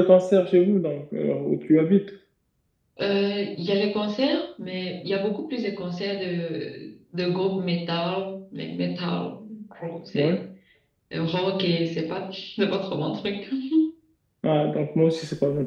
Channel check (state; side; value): identical; both; correlation 1.00